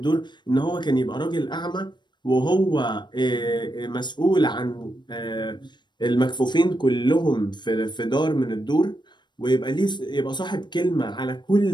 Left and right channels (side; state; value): right; late; 0.22 ms